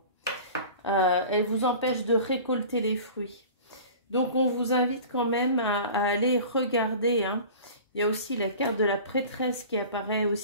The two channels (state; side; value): inverted; both; correlation -0.40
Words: Elle vous empêche de récolter les fruits. Donc, on vous invite quand même à aller regarder. Hein. Il y a aussi la carte de la prêtresse qui apparaît